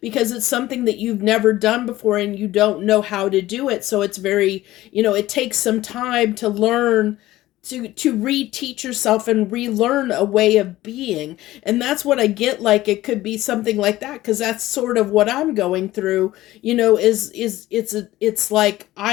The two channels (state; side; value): quieter; right; 16.2 dB